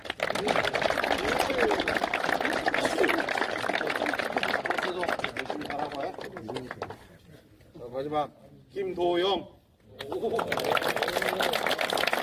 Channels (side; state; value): both; identical; correlation 1.00